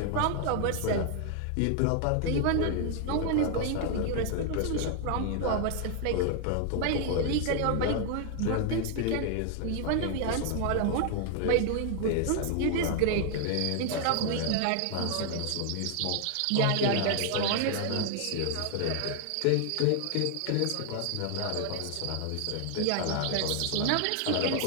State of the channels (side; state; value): both; different; correlation 0.00